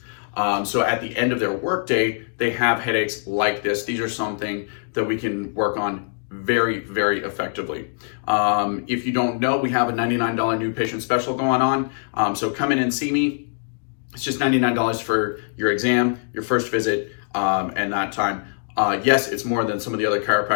So at the end of their workday, they have headaches like this. These are something that we can work on very, very effectively. If you don't know, we have a $99 new patient special going on. So come in and see me. It's just $99 for your exam, your first visit, and that time. Yes, it's more than some of the other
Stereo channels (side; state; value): right; silent; digital silence